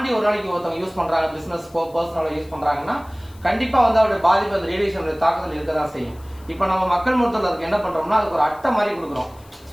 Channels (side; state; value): left; noise; hiss, 27 dB below the sound